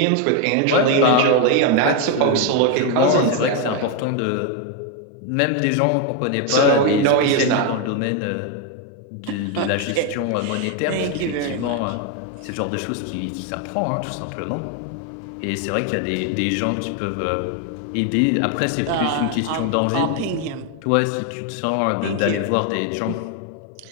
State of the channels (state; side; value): different; both; correlation 0.01